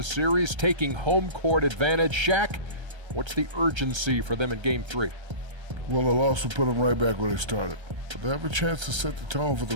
series, taking home court advantage, Shaq, what's the urgency for them in Game 3? Well, the loss will put them right back where they started. But they have a chance to set the tone for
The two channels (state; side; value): late; left; 1.3 ms